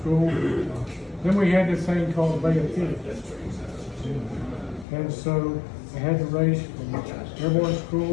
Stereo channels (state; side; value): drops out; right; at 4.9 s